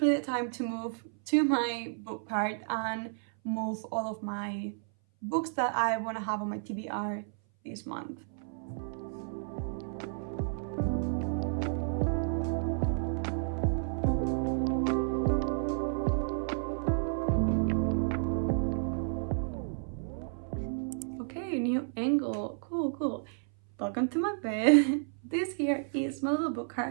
the time to move to my book cart and move all of my books that I want to have on my TBR this month. New angle. Cool. Welcome to my bed. This here is my little book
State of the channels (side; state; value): left; silent; 57 dB below the other